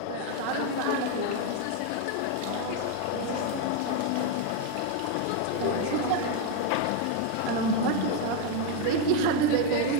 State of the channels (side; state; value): both; different; correlation 0.01